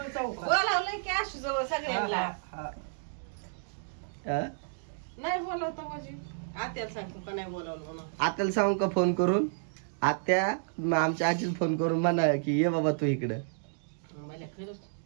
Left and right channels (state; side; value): silent; left; digital silence